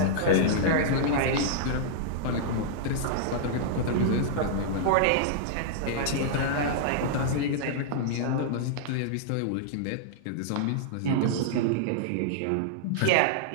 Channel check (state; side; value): different; both; correlation -0.01